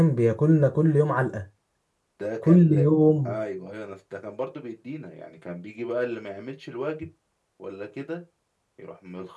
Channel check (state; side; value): identical; both; correlation 1.00